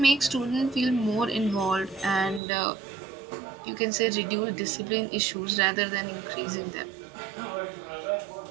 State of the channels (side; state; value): left; drops out; at 2.4 s